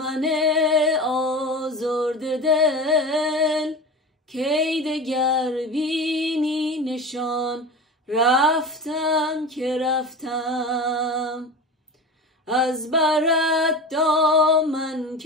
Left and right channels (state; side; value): normal; both; correlation 0.30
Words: آزرده دل، کی دگر بینی نشان. رفتم که رفتم، از برت دامن